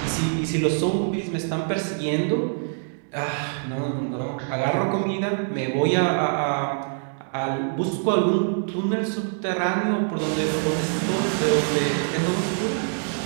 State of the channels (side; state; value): left; silent; 62 dB below the other